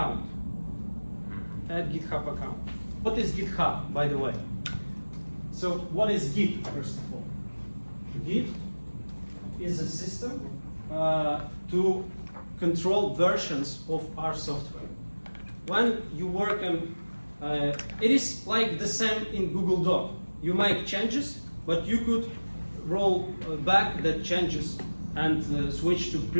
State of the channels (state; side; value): inverted; both; correlation -1.00